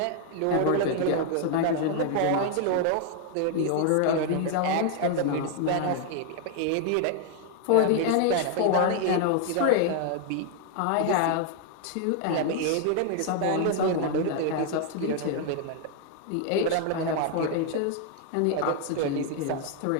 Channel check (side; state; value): both; different; correlation 0.00